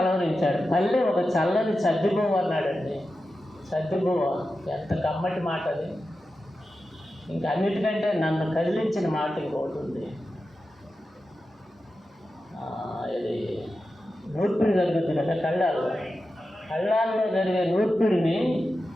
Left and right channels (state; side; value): normal; both; correlation 0.92